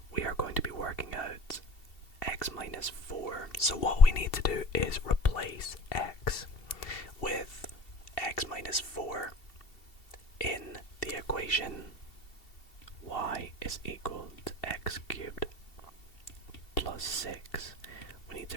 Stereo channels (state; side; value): late; right; 2.7 ms